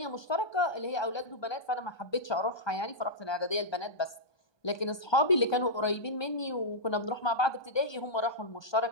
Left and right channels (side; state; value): right; late; 1.2 ms